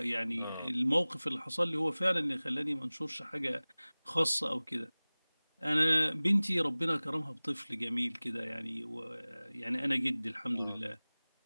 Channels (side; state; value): both; inverted; correlation -0.99